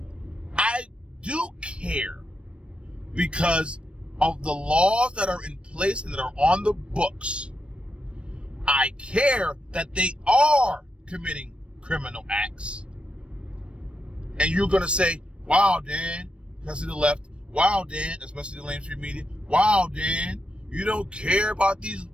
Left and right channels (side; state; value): left; late; 0.059 ms